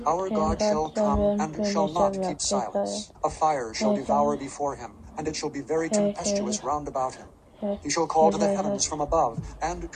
Our God shall come, and shall not keep silence. A fire shall devour before him, and it shall be very tempestuous round about him. He shall call to the heavens from above, and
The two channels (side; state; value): both; identical; correlation 1.00